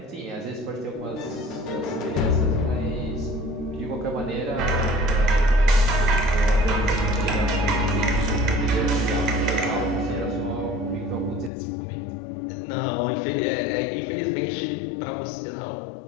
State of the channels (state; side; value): drops out; right; at 11.5 s